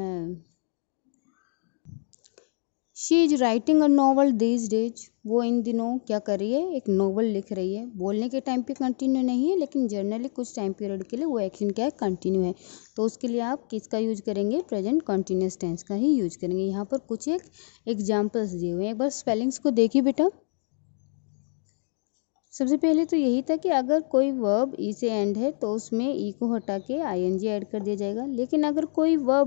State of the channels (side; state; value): right; silent; digital silence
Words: she is writing a novel these days. वो इन दिनों क्या कर रही है? एक नॉवल लिख रही है। बोलने के टाइम पे कंटिन्यू नहीं है लेकिन जनरली कुछ टाइम पीरियड के लिए वो एक्शन क्या है? कंटिन्यू है। तो उसके लिए आप किसका यूज करेंगे? प्रेजेंट कंटिन्यूअस टेंस का ही यूज करेंगे। यहाँ पर कुछ एक एग्जाम्पल्स दिए हुए हैं, एक बार स्पेलिंग्स को देखिए बेटा। सबसे पहले तो यही था कि अगर कोई वर्ब ई से एंड है तो उसमें ई को हटा के ING ऐड कर दिया जाएगा। लेकिन अगर कोई